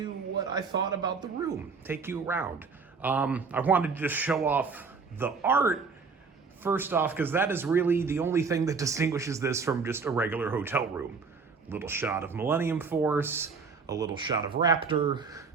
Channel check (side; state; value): left; quieter; 4.9 dB